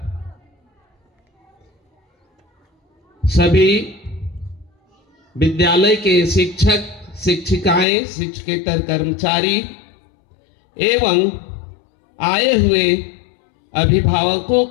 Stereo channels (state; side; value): drops out; right; at 7.9 s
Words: सभी विद्यालय के शिक्षक, शिक्षिकाएं, शिक्षकेतर कर्मचारी एवं आए हुए अभिभावकों